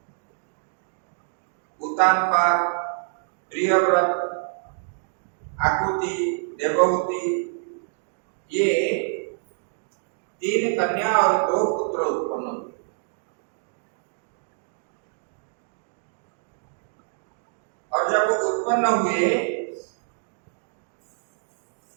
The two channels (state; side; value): silent; left; digital silence